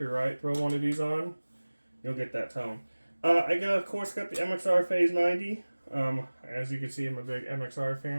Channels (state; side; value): inverted; both; correlation -1.00